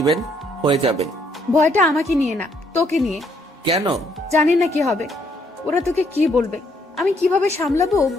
হয়ে যাবে। ভয়টা আমাকে নিয়ে না, তোকে নিয়ে। কেন? জানি না কি হবে। ওরা তোকে কি বলবে, আমি কিভাবে সামলাবো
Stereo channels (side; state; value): both; normal; correlation 0.69